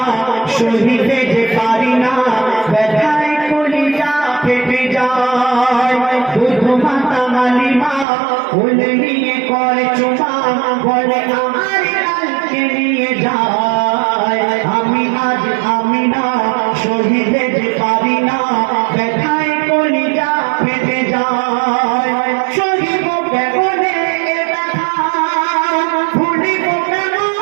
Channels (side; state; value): left; drops out; at 8.1 s